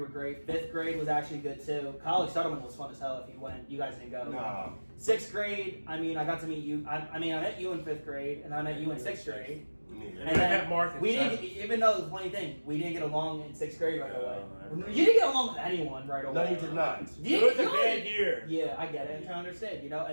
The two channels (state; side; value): inverted; both; correlation -1.00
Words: were great. 5th grade was actually good too. College Settlement was fun as hell if you went. You guys didn't go. Nah. 6th grade, I got to meet you. I met you in 5th grade, and I met you in 6th grade. Yeah. And then Mark we didn't, even though the funny thing, we didn't get along in 6th grade right away. You didn't get along with anyone right away. No, you did not. It was a bad year. Yeah, I get it. I'm trying to understand, you know.